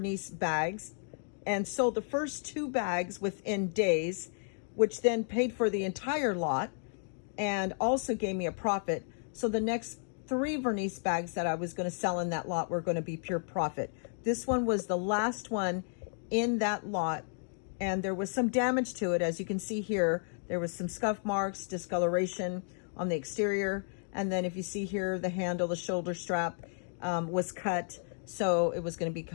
bags and sold the first 2 bags within days, which then paid for the entire lot and also gave me a profit. So the next 3 Vernice bags that I was going to sell in that lot were going to be pure profit. This one was the last one in that lot, and there was some damage to it. As you can see here, there was some scuff marks, discoloration on the exterior. And then if you see here, the handle, the shoulder strap was cut. So it was going to be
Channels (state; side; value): silent; right; digital silence